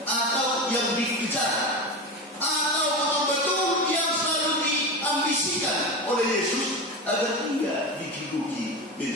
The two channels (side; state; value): both; normal; correlation 0.23